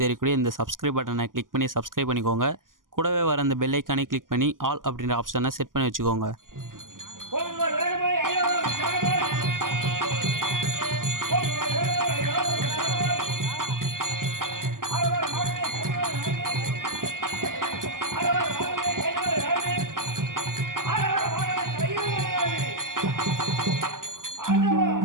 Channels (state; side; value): late; left; 0.90 ms